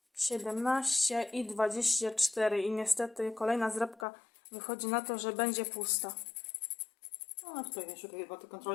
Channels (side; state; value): right; drops out; at 4.0 s